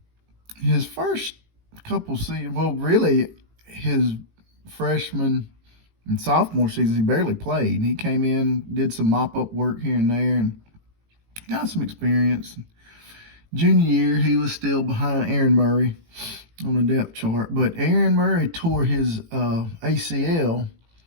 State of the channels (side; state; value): left; late; 18 ms